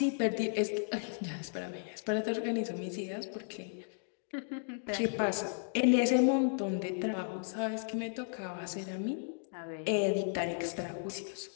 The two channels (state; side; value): silent; right; digital silence